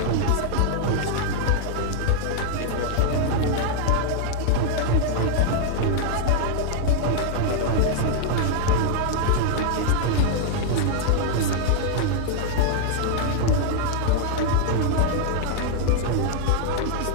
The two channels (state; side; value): different; both; correlation 0.00